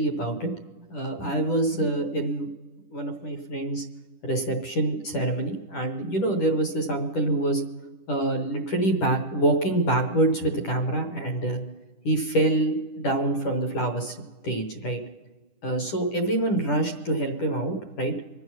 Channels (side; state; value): right; late; 10 ms